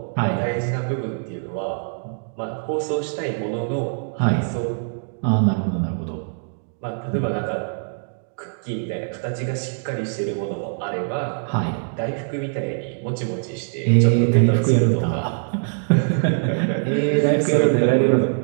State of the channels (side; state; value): left; silent; digital silence